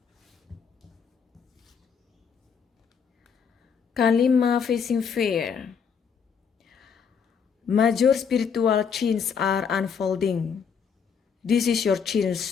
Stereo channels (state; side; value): quieter; right; 6.6 dB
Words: Kalima facing fear. Major spiritual changes are unfolding. This is your